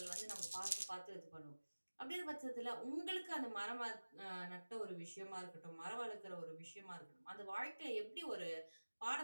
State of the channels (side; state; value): both; inverted; correlation -1.00